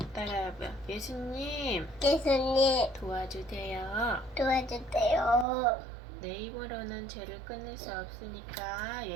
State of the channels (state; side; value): drops out; left; at 5.5 s